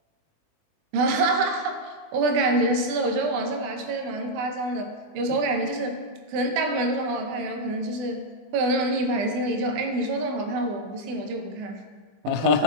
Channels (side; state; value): left; late; 20 ms